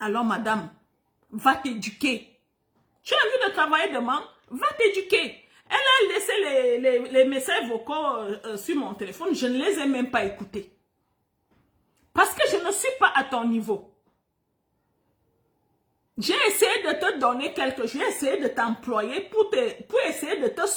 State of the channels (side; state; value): both; identical; correlation 1.00